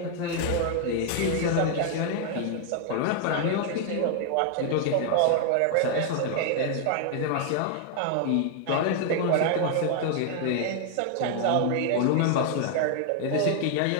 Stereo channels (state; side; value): different; both; correlation 0.00